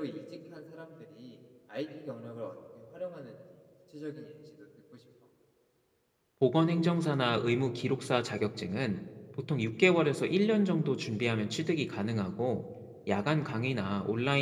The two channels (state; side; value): identical; both; correlation 1.00